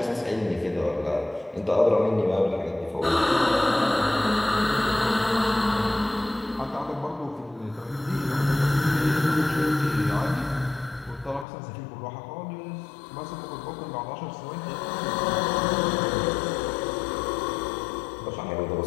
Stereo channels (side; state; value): right; drops out; at 11.5 s